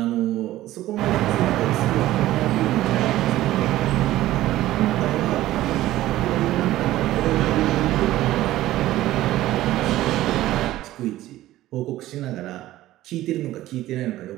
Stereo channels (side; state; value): left; quieter; 15.1 dB